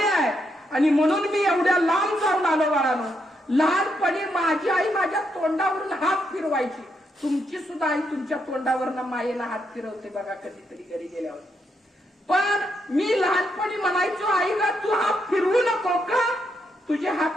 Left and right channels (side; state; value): both; normal; correlation 0.79